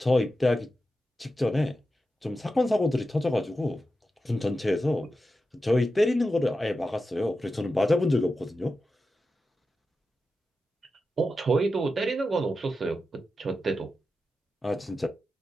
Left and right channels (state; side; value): normal; both; correlation 0.91